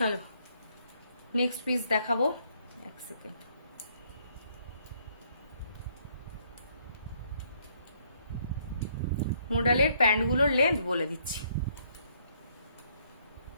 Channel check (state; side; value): inverted; both; correlation -0.68